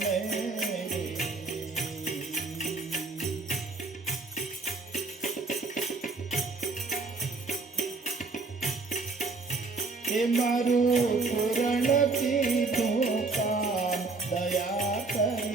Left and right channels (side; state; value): left; quieter; 3.9 dB